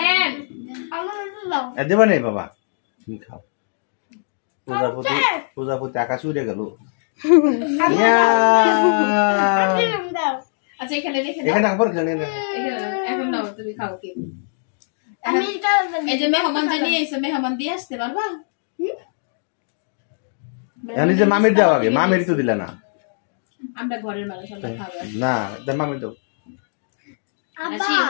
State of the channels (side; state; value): right; silent; digital silence